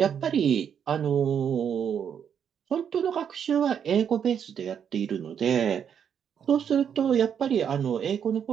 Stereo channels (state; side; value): quieter; left; 8.1 dB